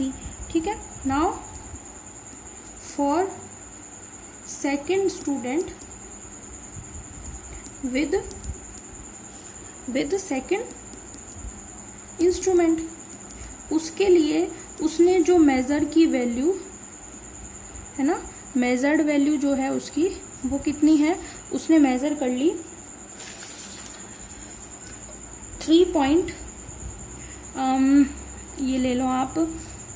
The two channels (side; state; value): both; identical; correlation 1.00